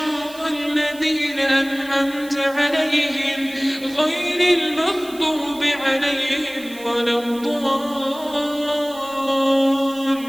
الذين أنعمت عليهم غير المغضوب عليهم ولا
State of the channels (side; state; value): right; noise; hiss, 19 dB below the sound